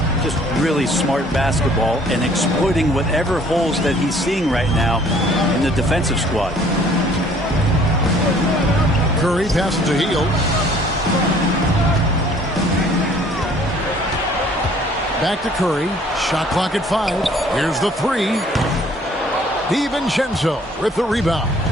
Just really smart basketball and exploiting whatever holes that he's seeing right now in the defensive squad. Curry passes to Hield. Back to Curry. Shot clock at 5. Here's the three. DiVincenzo with the rebound.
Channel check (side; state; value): both; normal; correlation 0.56